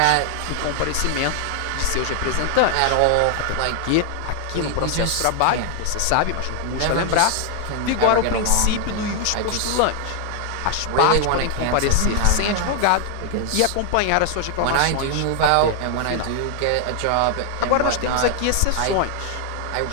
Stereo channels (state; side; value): different; both; correlation 0.00